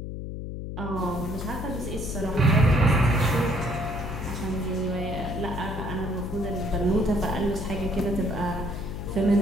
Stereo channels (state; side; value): noise; left; hum, 6 dB below the sound